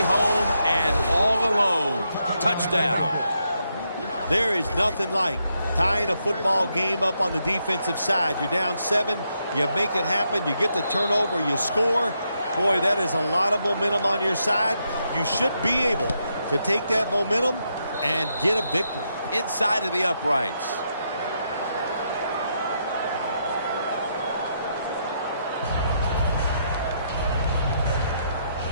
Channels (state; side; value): inverted; both; correlation -0.79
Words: home and all alone. Touchdown. There is nothing like tying a football game up on the defensive side. You're down 7. You make it happen. You get the turnover. You score. Boy, that is a lot of momentum on your side. You should be able to take that momentum and get a victory. Inside of the uprights.